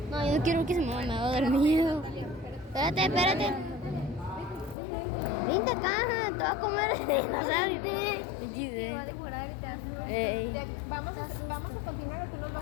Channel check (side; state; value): right; drops out; at 4.8 s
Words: No, yo no quiero que se mueva, me va a dar miedo. Espérate, espérate. Vente acá, te va a comer el dinosaurio. Te va a devorar y te hace mal. Ey. Vamos a continuar o tú nos vas